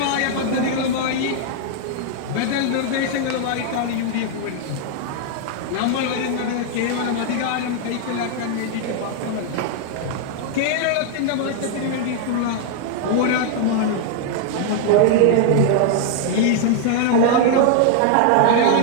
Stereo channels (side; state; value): both; different; correlation 0.00